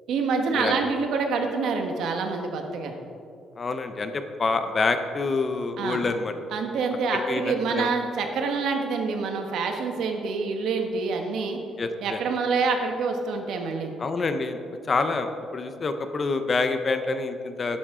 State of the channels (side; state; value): both; normal; correlation 0.70